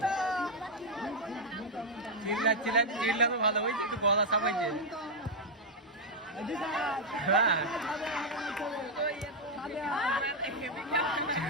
चिल्ला चिल्ला चिल्ला तो ভালো হইছে তো গলা সাবাইছে হ্যাঁ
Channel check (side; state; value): both; normal; correlation 0.00